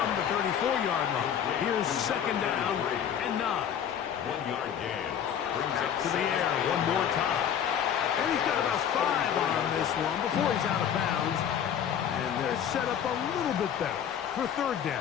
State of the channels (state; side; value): quieter; right; 8.9 dB